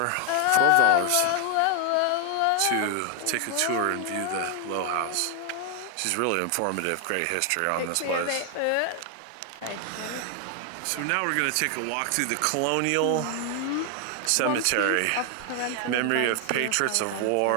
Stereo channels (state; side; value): different; both; correlation 0.00